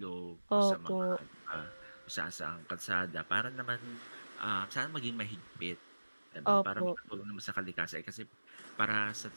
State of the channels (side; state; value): both; inverted; correlation -1.00